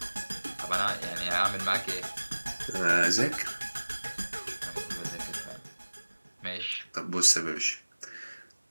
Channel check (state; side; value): inverted; both; correlation -1.00